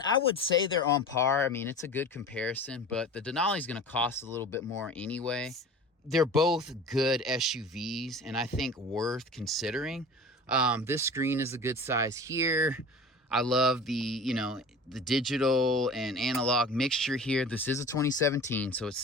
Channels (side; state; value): both; normal; correlation 0.38